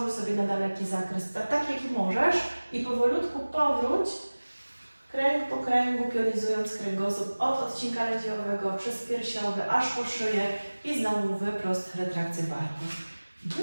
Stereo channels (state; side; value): inverted; both; correlation -1.00